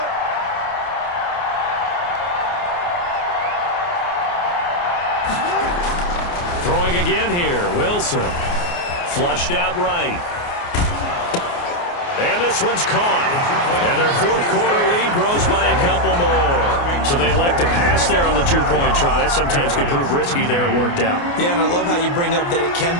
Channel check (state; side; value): late; right; 29 ms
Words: Throwing again here, Wilson. Flushed out right. And this one's caught. And their 4th quarter lead grows by a couple more. So they elect to pass there on the 2-point try. Sometimes can prove risky there. It worked out. Yeah, and I love how you bring up that it can